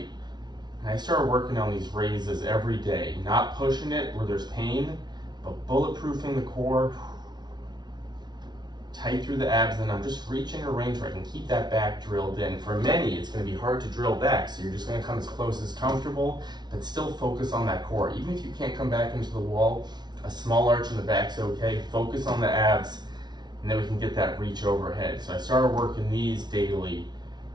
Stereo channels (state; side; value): late; left; 0.20 ms